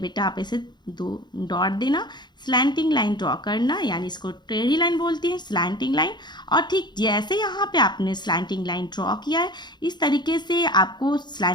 आप ऐसे दो डॉट देना, स्लैंटिंग लाइन ड्रॉ करना, यानी इसको टेढ़ी लाइन बोलती है, स्लैंटिंग लाइन। और ठीक जैसे यहाँ पे आपने स्लैंटिंग लाइन ड्रॉ किया है, इस तरीके से आपको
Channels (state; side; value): late; right; 0.21 ms